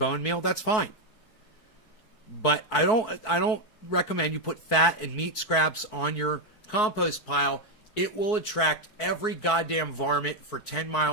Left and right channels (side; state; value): right; late; 4.6 ms